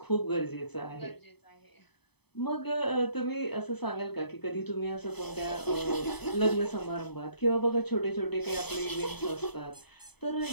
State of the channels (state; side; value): late; right; 0.98 ms